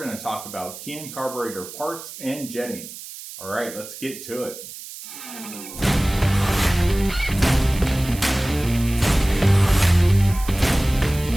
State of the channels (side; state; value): right; noise; hiss, 13 dB below the sound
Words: to talk about Keihin Carburetor parts and jetting. All right, let's get to it.